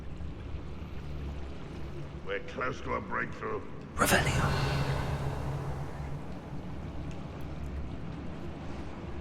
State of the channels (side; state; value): both; identical; correlation 1.00